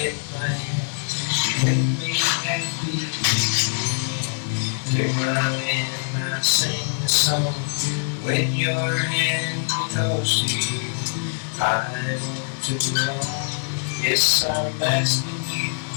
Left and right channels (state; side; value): silent; right; 60 dB below the other